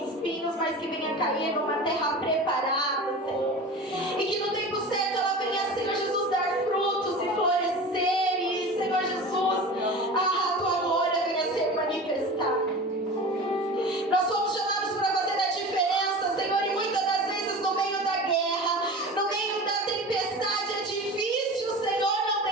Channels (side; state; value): both; normal; correlation 0.34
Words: mas que venha cair numa terra preparada, Senhor, e que no tempo certo ela venha, Senhor Jesus, dar frutos e florescer, e, Senhor Jesus, a tua glória venha ser manifestada. Nós somos chamados para fazer a diferença, Senhor, e muitas das vezes no meio da guerra, no meio da tempestade, é difícil, Senhor, não